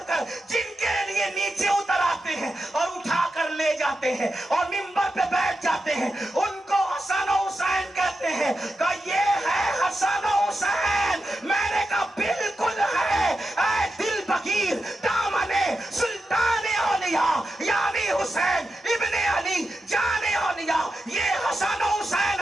جن کے لیے نیچے اتر آتے ہیں اور اٹھا کر لے جاتے ہیں اور ممبر پہ بیٹھ جاتے ہیں ان کو حسن و حسین کہتے ہیں. کہ یہ ہے حسن و حسین. میں نے کہا بالکل ہے. اے دل بغیر دامن سلطان اولیاء یعنی حسین ابن علی جان اولیاء یہ حسن و حسین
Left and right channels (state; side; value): normal; both; correlation 0.89